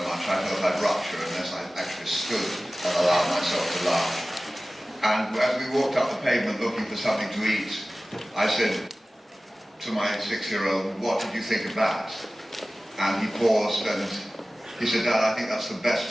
much I felt I'd rupture unless I actually stood and allowed myself to laugh. And as we walked up the pavement looking for something to eat, I said to my 6-year-old, "What did you think of that?" And he paused and he said, "Dad, I think that's the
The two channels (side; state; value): both; normal; correlation 0.97